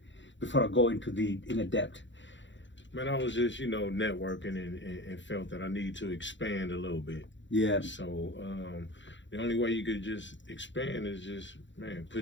Before I go into the inner depth. Man, I was just, networking and felt that I need to expand a little bit. Yeah. So the only way you could just expand is just, man,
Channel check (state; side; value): late; right; 0.54 ms